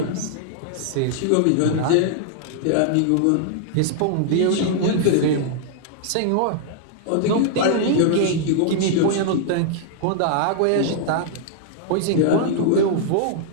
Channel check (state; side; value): different; both; correlation -0.01